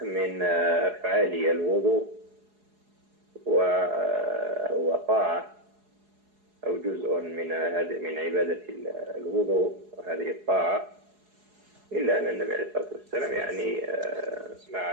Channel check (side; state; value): left; late; 4.8 ms